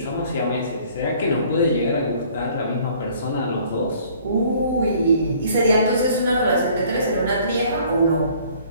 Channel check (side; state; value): both; inverted; correlation -0.55